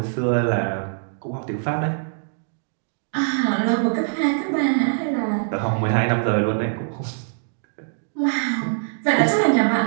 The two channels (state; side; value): silent; left; digital silence